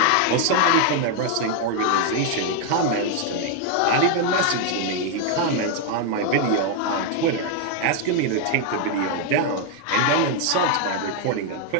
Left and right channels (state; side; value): different; both; correlation 0.00